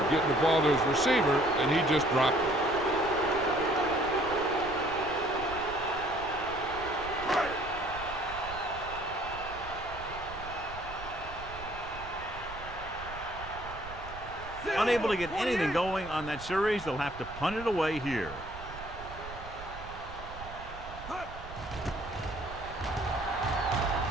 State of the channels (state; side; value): noise; right; rumble, 13 dB below the sound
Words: getting the ball to his receiver, and he just dropped it. Unable to get anything going on that series, they'll have to punt it away here.